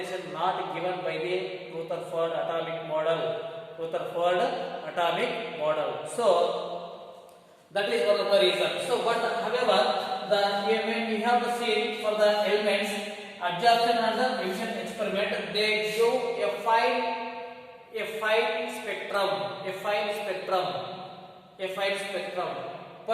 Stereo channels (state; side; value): identical; both; correlation 1.00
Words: not given by the Rutherford atomic model. So that is one of the reasons. So but however, when we have to see for the elements, absorption and emission experiment, they show a fine spectrum.